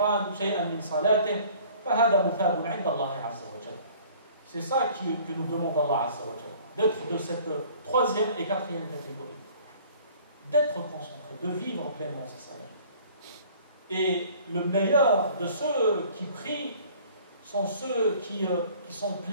شيئا من صلاته فهذا مثاب عند الله عز وجل. C'est ça que nous demande Allah Azza wa Jalla, d'être de cette troisième et quatrième catégorie, d'être concentré, de vivre pleinement sa salat. Et le meilleur de ceux qui prient sont ceux qui sont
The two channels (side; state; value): both; inverted; correlation -0.52